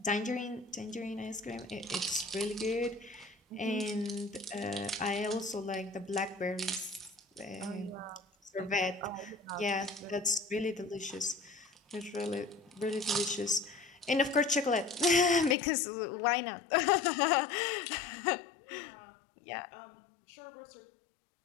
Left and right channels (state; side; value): drops out; right; at 15.6 s